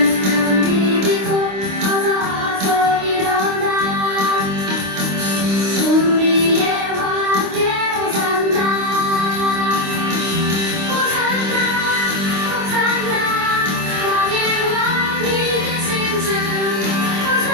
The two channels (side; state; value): left; late; 26 ms